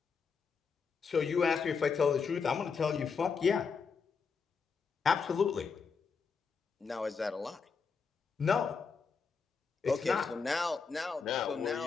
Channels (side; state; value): right; quieter; 5.5 dB